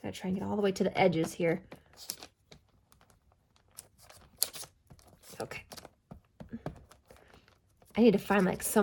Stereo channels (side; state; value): both; identical; correlation 1.00